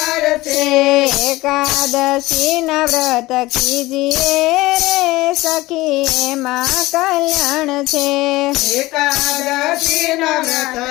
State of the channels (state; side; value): quieter; right; 19.1 dB